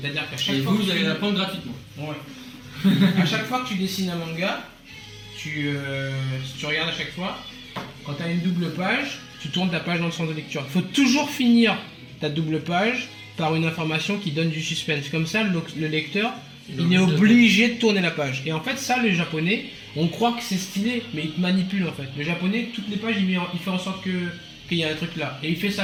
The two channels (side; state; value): both; identical; correlation 1.00